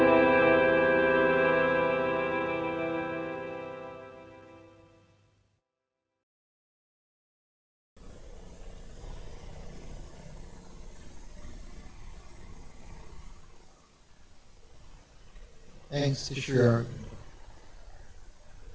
Thanks to Sri Auroville.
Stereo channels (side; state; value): both; identical; correlation 1.00